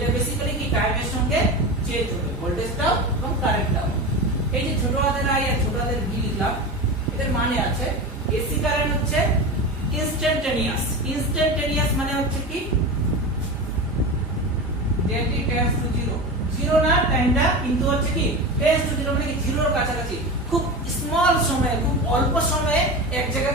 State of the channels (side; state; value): both; normal; correlation 0.25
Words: বেসিক্যালি কি টাইমের সঙ্গে চেঞ্জ হবে, ভোল্টেজটাও এবং কারেন্টটাও। এই যে ছোট হাতের আই আর ছোট হাতের ভি লিখলাম, এদের মানে আছে এসি কারেন্ট হচ্ছে ইনস্ট্যান্টেনিয়াস। ইনস্ট্যান্টেনিয়াস মানে হচ্ছে কি যেটি টেন্ডস টু জিরো, জিরো না টাইমটা কিন্তু হচ্ছে কি টেন্ডস টু জিরো, মানে কি জিরোর কাছাকাছি, খুব স্মল সময়ে, খুব অল্প সময়ে এক জায়গা